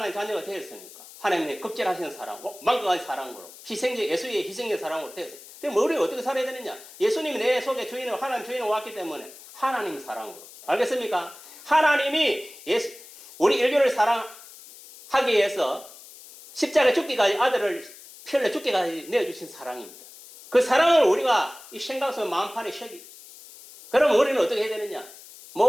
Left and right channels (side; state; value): left; noise; hiss, 19 dB below the sound